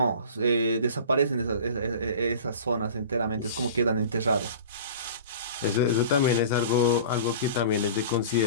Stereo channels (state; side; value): inverted; both; correlation -0.40